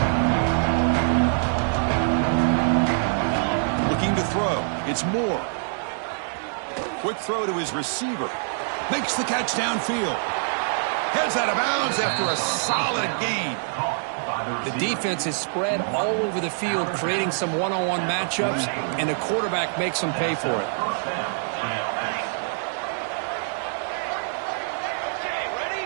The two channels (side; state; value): left; silent; digital silence